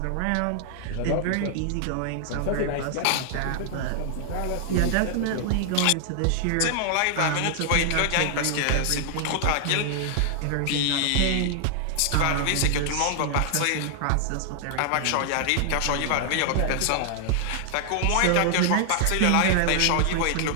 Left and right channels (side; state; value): both; different; correlation 0.00